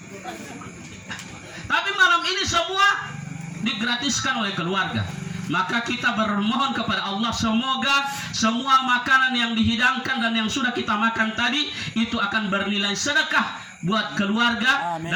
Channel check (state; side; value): identical; both; correlation 1.00